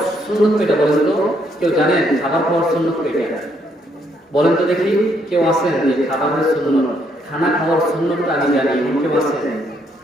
সুন্নত কয়টা বলেন তো? কেউ জানেন খাবার খাওয়ার সুন্নত কয়টা? বলেন তো দেখি, কেউ আছেন যে খাবারের সুন্নত, খানা খাওয়ার সুন্নতটা আমি জানি, কেউ আছেন?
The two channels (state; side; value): normal; both; correlation 0.72